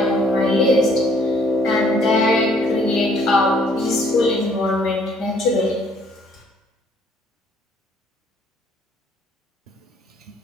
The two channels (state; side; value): normal; both; correlation 0.62